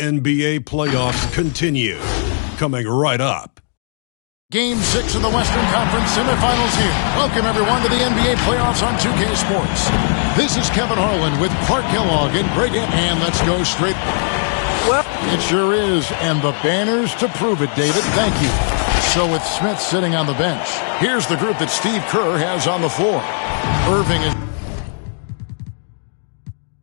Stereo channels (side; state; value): right; silent; digital silence